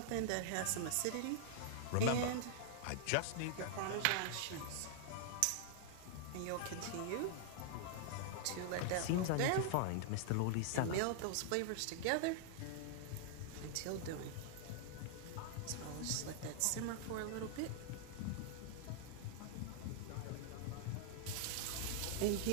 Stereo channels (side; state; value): both; different; correlation -0.01